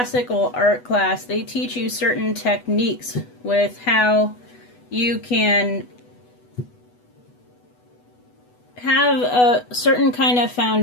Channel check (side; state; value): right; late; 8.1 ms